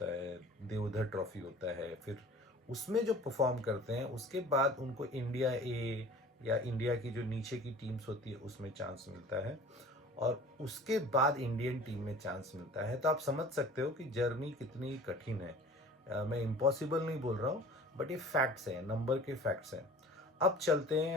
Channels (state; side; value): normal; both; correlation 0.44